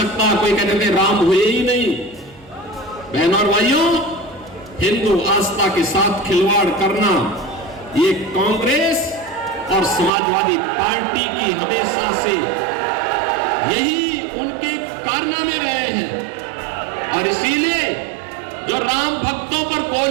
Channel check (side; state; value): left; drops out; at 10.1 s